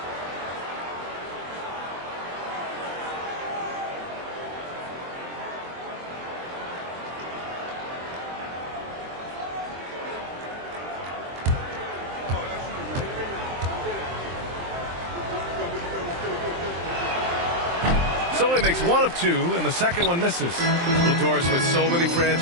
So he makes one of two, and the second one misses. Doris, with so many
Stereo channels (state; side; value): late; left; 23 ms